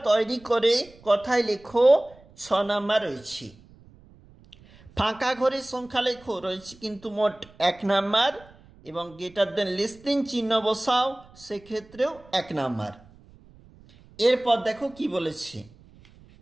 তৈরি করে কথায় লেখো 6 নাম্বার রয়েছে। ফাঁকা ঘরে সংখ্যা লেখো রয়েছে কিন্তু মোট 1 নাম্বার, এবং গ্রেটার দেন লেস দেন চিহ্ন বসাও, সেক্ষেত্রেও 1 নাম্বার। এরপর দেখো কি বলেছে,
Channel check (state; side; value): noise; right; rumble, 25 dB below the sound